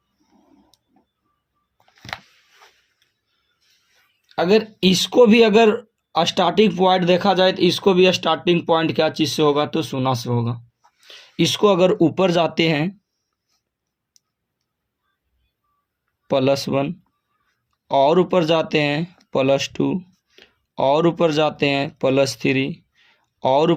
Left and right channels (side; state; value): both; identical; correlation 1.00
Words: अगर इसको भी अगर स्टार्टिंग पॉइंट देखा जाए तो इसको भी स्टार्टिंग पॉइंट क्या चीज़ से होगा? तो 0 से होगा। इसको अगर ऊपर जाते हैं +1, और ऊपर जाते हैं +2, और ऊपर जाते हैं +3, और